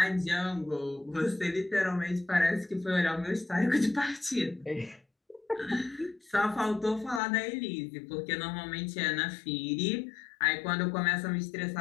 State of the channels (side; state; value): right; drops out; at 7.2 s